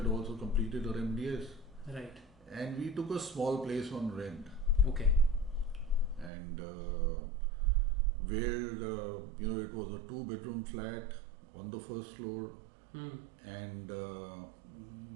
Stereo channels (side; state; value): left; drops out; at 6.3 s